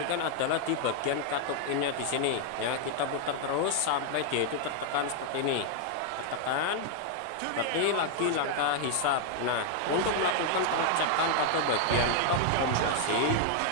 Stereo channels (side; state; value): both; different; correlation 0.00